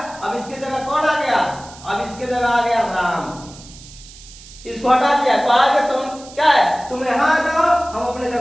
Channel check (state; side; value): noise; right; hiss, 19 dB below the sound